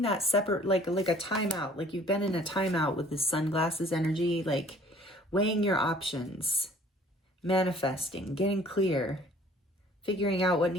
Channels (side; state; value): both; normal; correlation 0.53